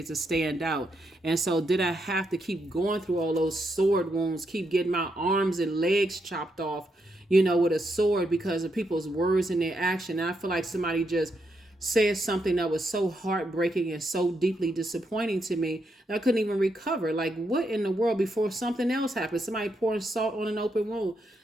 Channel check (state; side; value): normal; both; correlation 0.81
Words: to stand out. And so did I have to keep going through all those sword wounds, keep getting my arms and legs chopped off, with a sword because of people's words and their action? And I feel like somebody just said something that was so heartbreaking and so deeply disappointing to me that I couldn't even recover. Like, what in the world, before something else happened? Somebody pouring salt on an open wound.